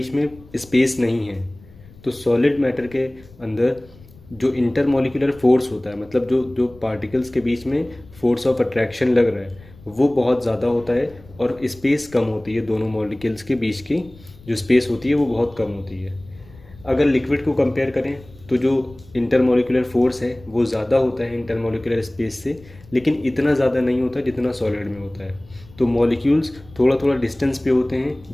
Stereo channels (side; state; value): left; noise; rumble, 23 dB below the sound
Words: में स्पेस नहीं है। तो सॉलिड मैटर के अंदर जो इंटरमोलिकुलर फोर्स होता है, मतलब जो जो पार्टिकल्स के बीच में फोर्स ऑफ अट्रैक्शन लग रहा है वो बहुत ज़्यादा होता है और स्पेस कम होती है। दोनों मॉलिक्यूल्स के बीच की जो स्पेस होती है वो बहुत कम होती है। अगर लिक्विड को कंपेयर करें तो जो इंटरमोलिकुलर फोर्स है वो ज़्यादा होता है इंटरमोलिकुलर स्पेस से, लेकिन इतना ज़्यादा नहीं होता जितना सॉलिड में होता है। तो मॉलिक्यूल्स थोड़ा थोड़ा डिस्टेंस पे होते हैं,